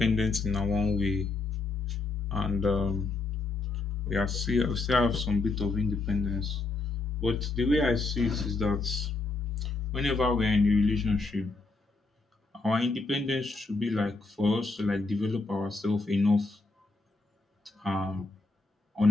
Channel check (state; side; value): quieter; right; 3.6 dB